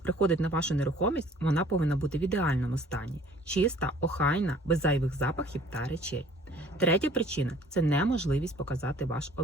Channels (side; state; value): both; normal; correlation 0.53